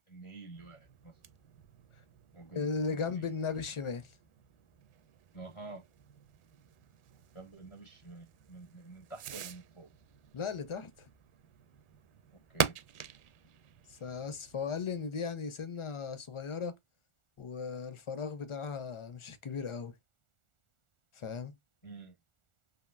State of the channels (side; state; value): right; late; 1.4 ms